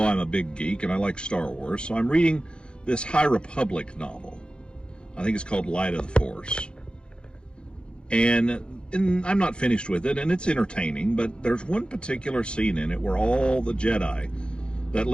a big geek and I like Star Wars, so I'm reading this High Republic novel. I think it's called Light of the Force. And I'm not finished with it, and it's entertaining, but there's one particular scene in it where all the Jedi that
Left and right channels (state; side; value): late; right; 0.053 ms